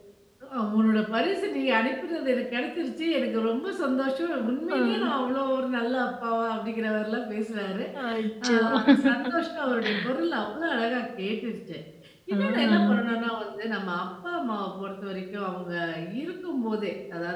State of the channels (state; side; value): identical; both; correlation 1.00